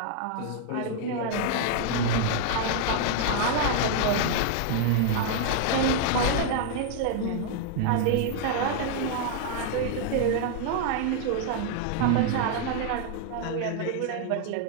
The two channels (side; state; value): both; different; correlation 0.00